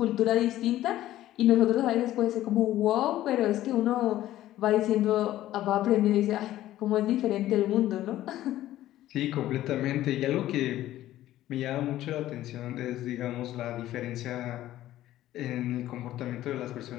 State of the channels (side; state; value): right; quieter; 14.1 dB